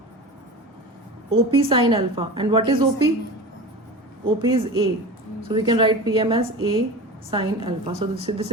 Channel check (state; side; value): normal; both; correlation 0.31